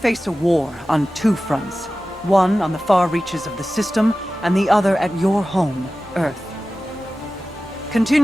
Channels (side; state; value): both; normal; correlation 0.95